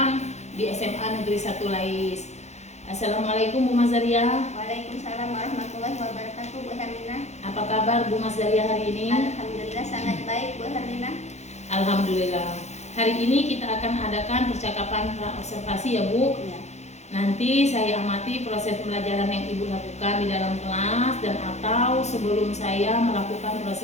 di SMA Negeri 1 Lais. Assalamualaikum Bu Mazaria. Waalaikumsalam warahmatullahi wabarakatuh, Bu Herlina. Apa kabar Bu Mazaria hari ini? Alhamdulillah sangat baik, Bu Herlina. Alhamdulillah. Hari ini kita akan adakan percakapan pra-observasi ya Bu. Ya. Nanti saya amati proses pembelajaran yang Ibu lakukan di dalam kelas dan atau sebelum saya melakukan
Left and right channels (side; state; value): right; late; 0.33 ms